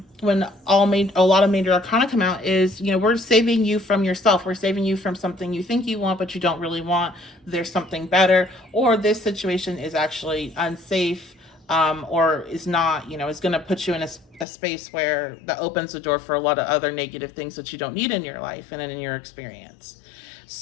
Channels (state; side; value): drops out; right; at 14.5 s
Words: when a lot of major arcana come out is, we're saving you from yourself. We're saving you from something you think you want, but you don't really want. There's something better, or this situation is actually unsafe, or is not, is going to put you in a space where that opens the door for a lot of other negative things that you don't need in your life and in your experience.